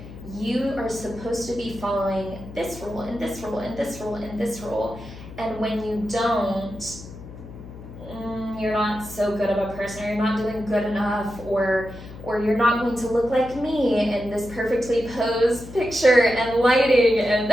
you are supposed to be following this rule and this rule and this rule and this rule, and when you don't, you're not so good of a person, or you're not doing good enough, or you're not going to look like me in this perfectly posed picture and lighting and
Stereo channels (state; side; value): noise; left; hum, 15 dB below the sound